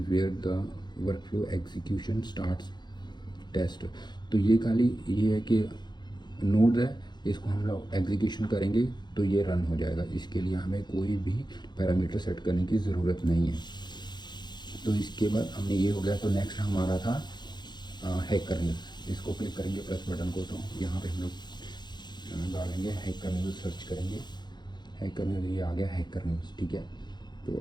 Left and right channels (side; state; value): right; late; 0.21 ms